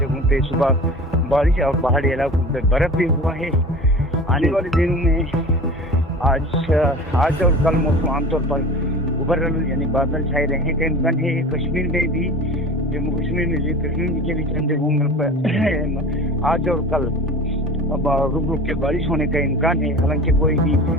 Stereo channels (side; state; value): both; normal; correlation 0.37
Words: जगहों पे सुबह बारिश और पहाड़ी इलाकों पे बर्फ़ भी हुआ है। आने वाले दिनों में आज और कल मौसम आमतौर पर उबरल यानी बादल छाए रहने का इम्कान है। कश्मीर में भी, जम्मू कश्मीर में कश्मीर के भी चंद जगहों पर आज और कल रुक रुक के बारिश होने का इम्कान है। हालांकि कोई भी